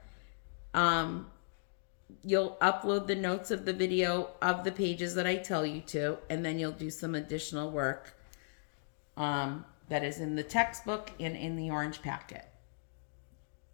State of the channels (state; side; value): silent; right; digital silence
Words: you'll upload the notes of the video of the pages that I tell you to, and then you'll do some additional work that is in the textbook and in the orange packet.